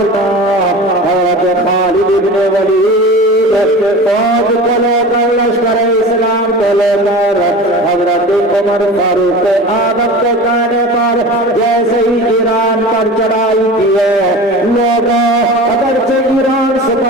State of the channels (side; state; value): both; normal; correlation 0.34